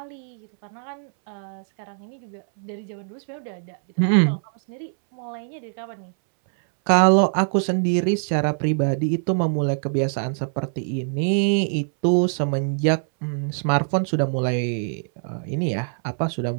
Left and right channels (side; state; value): left; silent; 63 dB below the other